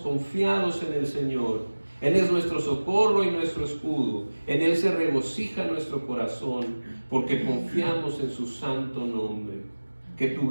en el Señor. Él es nuestro socorro y nuestro escudo. En Él se regocija nuestro corazón, porque confiamos en su santo nombre. Que tu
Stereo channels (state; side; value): inverted; both; correlation -1.00